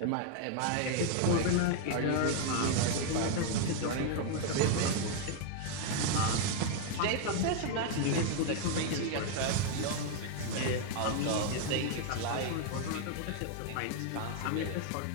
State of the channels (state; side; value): different; both; correlation 0.00